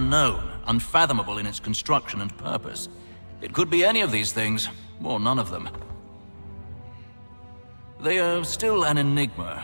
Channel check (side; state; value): both; inverted; correlation -1.00